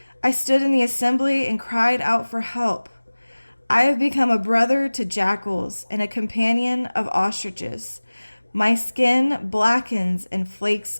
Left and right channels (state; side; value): inverted; both; correlation -1.00